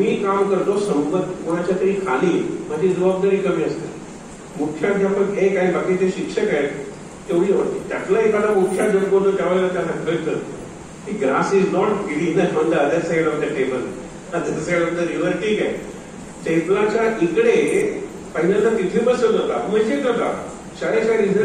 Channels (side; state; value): both; identical; correlation 1.00